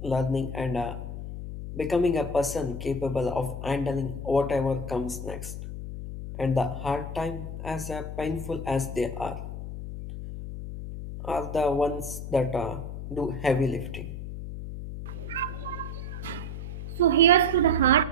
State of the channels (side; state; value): left; noise; hum, 7 dB below the sound